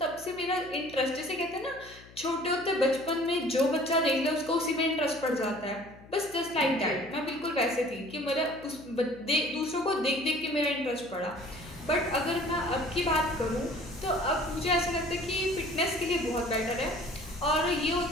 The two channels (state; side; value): noise; left; hum, 21 dB below the sound